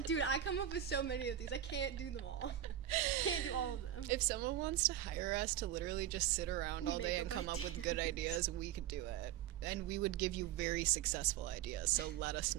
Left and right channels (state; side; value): quieter; left; 11.3 dB